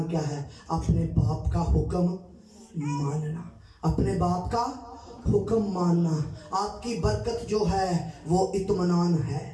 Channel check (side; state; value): both; identical; correlation 1.00